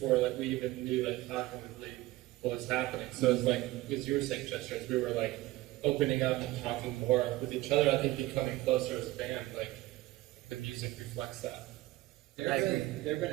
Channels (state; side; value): quieter; left; 17.9 dB